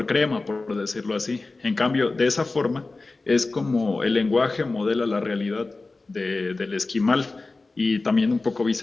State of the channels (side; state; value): right; quieter; 3.5 dB